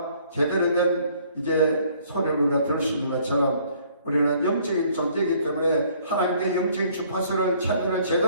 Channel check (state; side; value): inverted; both; correlation -0.61